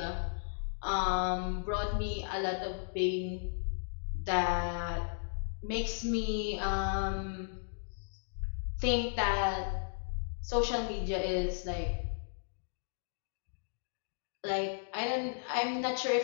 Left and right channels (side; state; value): right; silent; digital silence